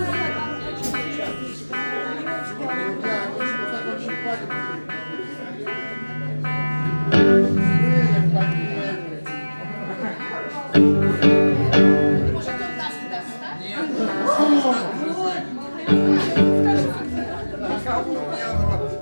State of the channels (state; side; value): inverted; both; correlation -1.00